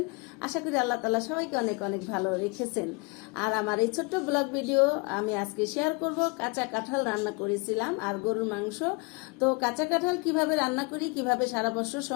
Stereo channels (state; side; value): quieter; right; 29.4 dB